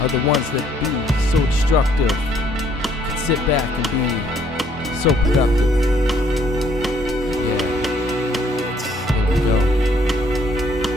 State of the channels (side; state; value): both; normal; correlation 0.65